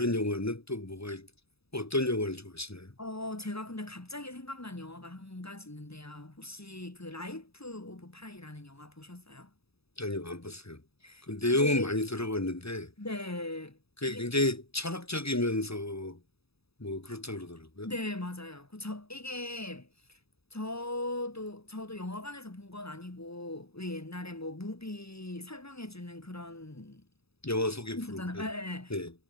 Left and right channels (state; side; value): late; right; 0.78 ms